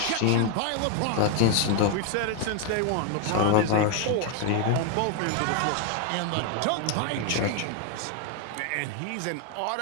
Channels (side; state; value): both; different; correlation 0.01